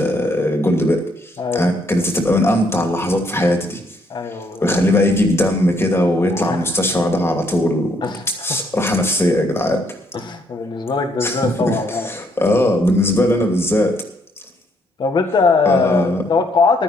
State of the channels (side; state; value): both; normal; correlation 0.71